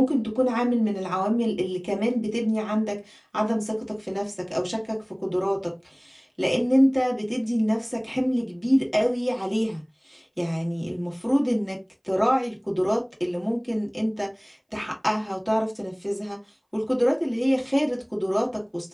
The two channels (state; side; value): identical; both; correlation 1.00